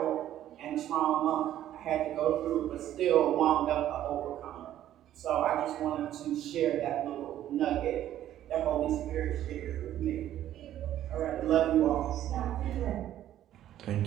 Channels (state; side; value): quieter; left; 12.1 dB